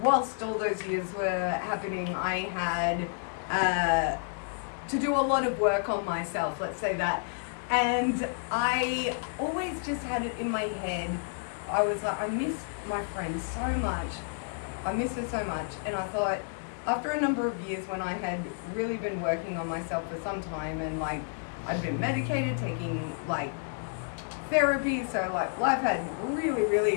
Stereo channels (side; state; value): right; silent; digital silence